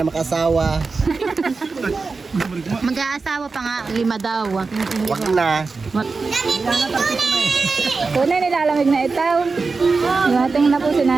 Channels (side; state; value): left; quieter; 4.3 dB